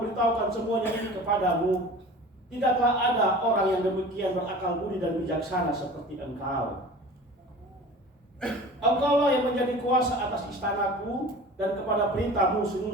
semuanya ini kepadamu, tidaklah ada orang yang demikian berakal budi dan bijaksana seperti engkau. Engkaulah yang menjadi kuasa atas istanaku, dan kepada perintahmu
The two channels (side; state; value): both; normal; correlation 0.40